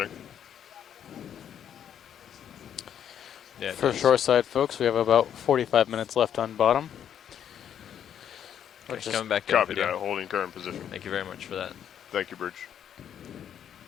Yeah, it For does. shoreside folks, we have about 45 minutes left on bottom. Okay, Which is coming back in Copy video. that. Holding current position. Thank you very much for that. Thank you, Bridge.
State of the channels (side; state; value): right; quieter; 9.3 dB